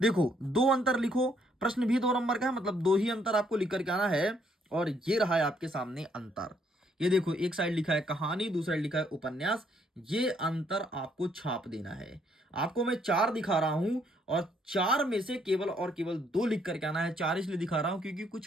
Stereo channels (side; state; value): both; normal; correlation 0.69